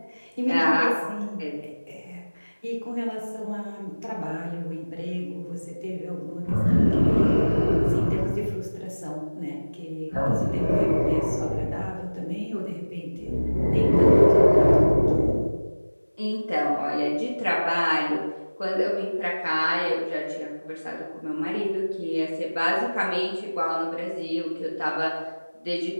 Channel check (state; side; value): inverted; both; correlation -1.00